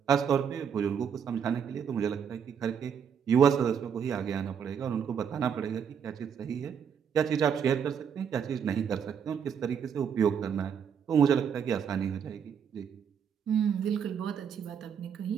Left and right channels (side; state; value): left; quieter; 7.6 dB